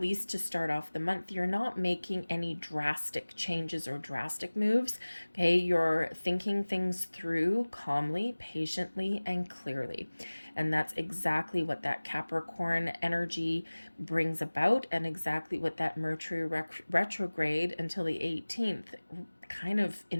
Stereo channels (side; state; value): both; inverted; correlation -1.00